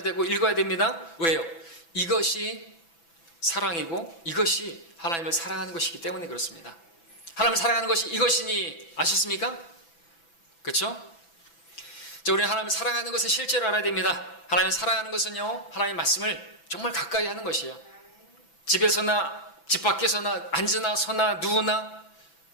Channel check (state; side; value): late; right; 6.0 ms